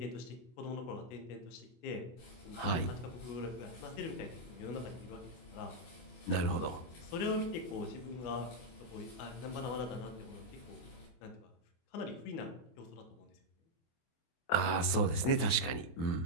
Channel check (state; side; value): late; right; 24 ms